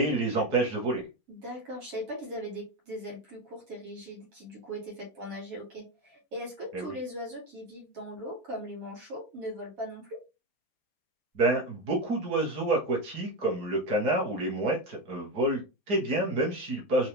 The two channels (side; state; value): left; late; 4.2 ms